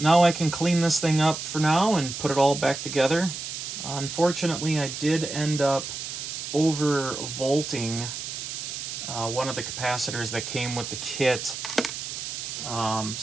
I can clean this thing up for now and put it all back together. Unfortunately, I did end up overvolting one of the capacitors that came with the kit.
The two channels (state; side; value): noise; right; hiss, 6 dB below the sound